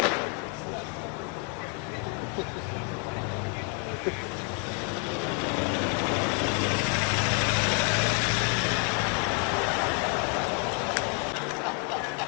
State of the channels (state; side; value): quieter; right; 31.5 dB